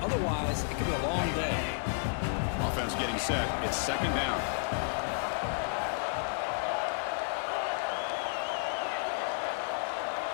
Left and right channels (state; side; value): silent; right; digital silence